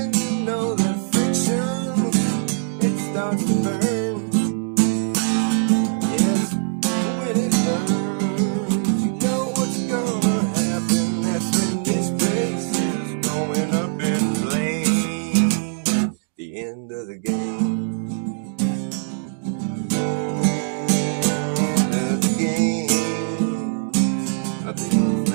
you know the friction, it starts to burn. Yes, when it burns, you know what's gonna happen. That's when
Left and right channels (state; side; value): silent; left; digital silence